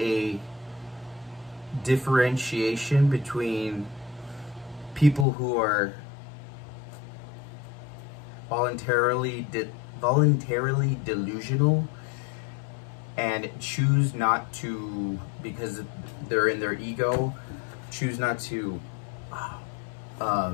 differentiation between people who are voluntarily delusional and choose not to, because they're in their ego, choose not to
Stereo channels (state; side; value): drops out; right; at 5.2 s